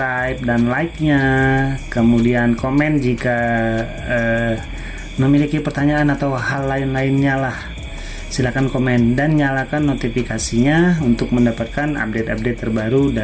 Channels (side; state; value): both; identical; correlation 1.00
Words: dan like-nya. Kemudian komen jika memiliki pertanyaan atau hal lain-lainnya lah. Silakan komen dan nyalakan notifikasinya untuk mendapatkan update-update terbaru